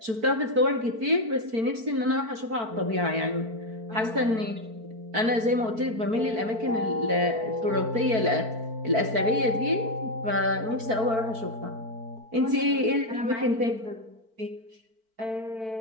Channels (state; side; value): late; left; 4.5 ms